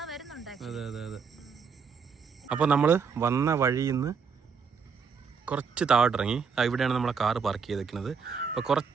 വരുന്നുണ്ട്. അതെ അതെ അതെ. അപ്പൊ നമ്മള് വന്ന വഴിയിൽ നിന്ന് കുറച്ച് താഴോട്ടിറങ്ങി. ഇവിടെയാണ് നമ്മളെ കാറ് പാർക്ക് ചെയ്തേക്കുന്നത്. അപ്പോൾ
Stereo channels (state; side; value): quieter; left; 5.9 dB